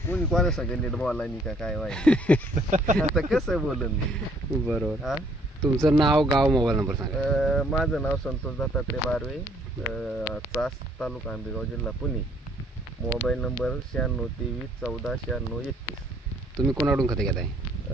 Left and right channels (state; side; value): normal; both; correlation 0.63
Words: कोणी कोणा सगळं नीट बोला नाही का काय व्हायचं आता कसं बोलन मी. बरोबर. हा तुमचं नाव गाव मोबाईल नंबर सांगा. माझं नाव संतोष दत्तात्रय बारवे चास तालुका आंबेगाव जिल्हा पुणे. Mobile number 9623149631. तुम्ही कोणाकडून खते घेताय?